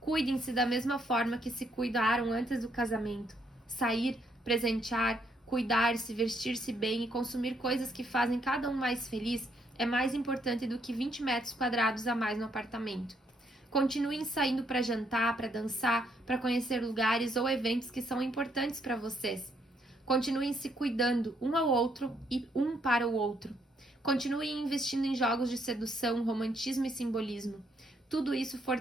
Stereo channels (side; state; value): both; normal; correlation 0.73